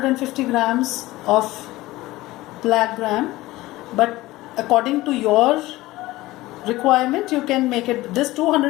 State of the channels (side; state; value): right; quieter; 18.3 dB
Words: grams of black gram, but according to your requirement you can make it. This